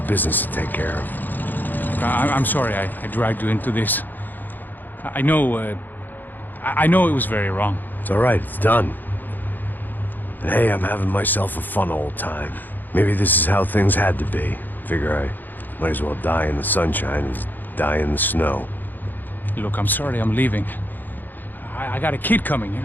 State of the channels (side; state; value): right; late; 0.088 ms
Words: business to take care of. I'm sorry I dragged you into this. I know it was very wrong. It's all right, it's done. And hey, I'm having myself a fun old time. Maybe this is how things had to be. Figure I might as well die in the sunshine as die in the snow. Look, I'm sorry I'm leaving. I got a kid coming,